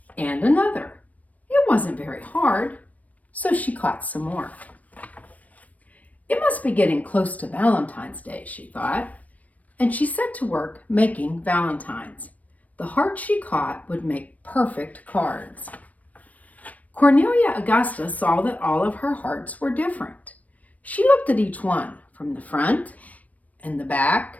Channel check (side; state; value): right; late; 0.071 ms